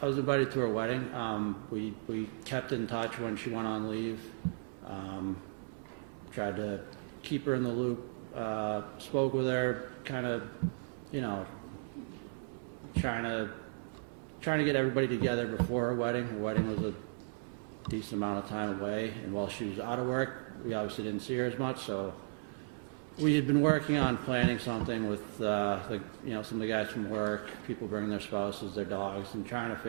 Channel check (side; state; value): left; silent; 54 dB below the other